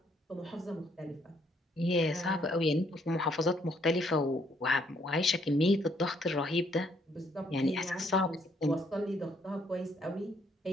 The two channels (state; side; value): normal; both; correlation 0.69